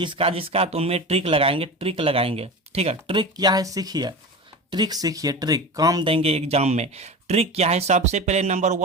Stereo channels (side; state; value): both; normal; correlation 0.29